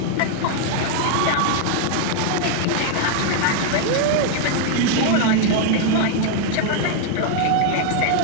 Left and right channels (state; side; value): different; both; correlation 0.00